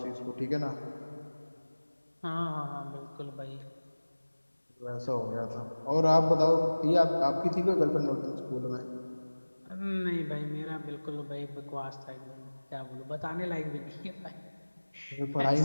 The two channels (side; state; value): both; inverted; correlation -1.00